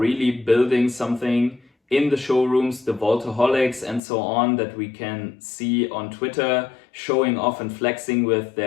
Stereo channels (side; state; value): right; drops out; at 4.0 s